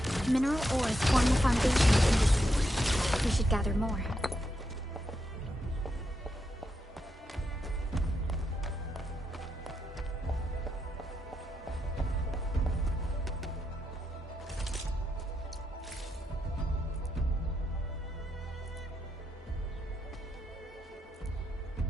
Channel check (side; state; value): both; normal; correlation 0.83